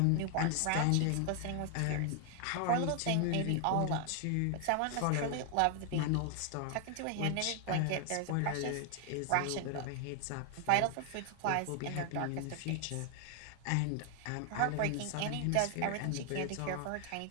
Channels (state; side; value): different; both; correlation 0.00